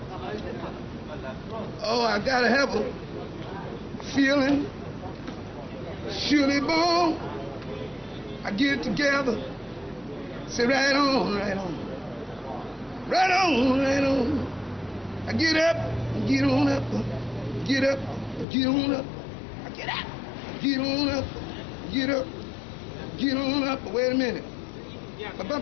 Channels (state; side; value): drops out; right; at 18.4 s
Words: Oh, I gotta have a feeling. Surely born. I get it together. Say right on, right on. Right on, right on. I get up, get on up, get up, get on up. I get up, get on up, get up, get on up. Wait a minute. I